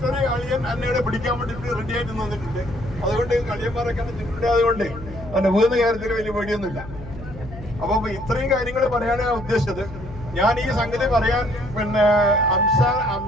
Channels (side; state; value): left; noise; hum, 14 dB below the sound